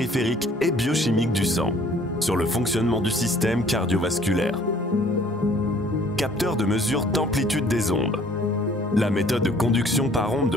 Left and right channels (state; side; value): normal; both; correlation 0.57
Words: et biochimique du sang, sur le fonctionnement du système cardiovasculaire. Capteur de mesure d'amplitude des ondes. La méthode de conduction par onde